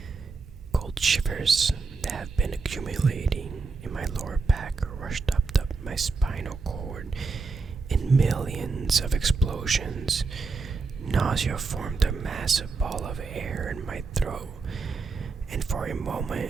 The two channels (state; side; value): quieter; left; 4.4 dB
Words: Cold shivers that have been accumulating in my lower back rushed up my spinal cord in millions of explosions. Nausea formed a massive ball of air in my throat, and for a